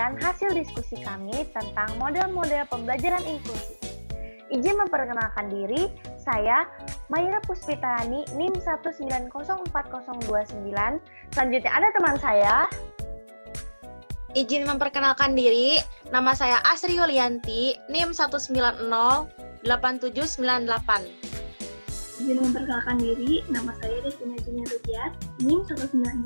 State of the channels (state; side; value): inverted; both; correlation -1.00